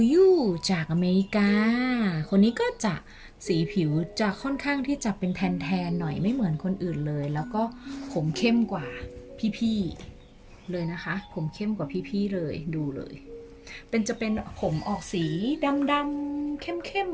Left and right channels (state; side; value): identical; both; correlation 1.00